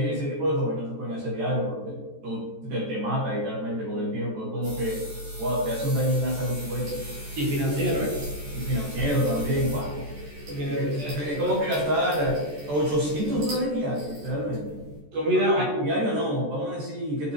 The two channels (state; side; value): late; left; 14 ms